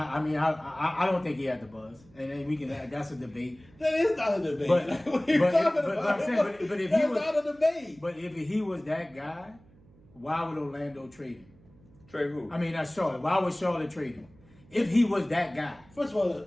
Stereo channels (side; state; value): right; noise; hum, 27 dB below the sound